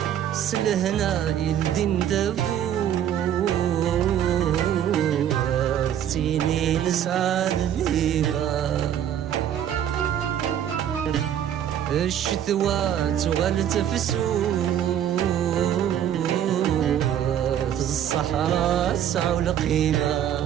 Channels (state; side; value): quieter; left; 10.1 dB